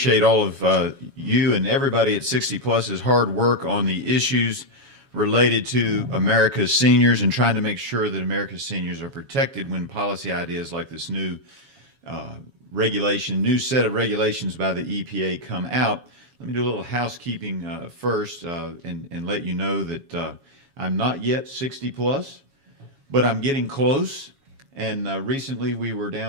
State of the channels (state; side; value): late; left; 7.2 ms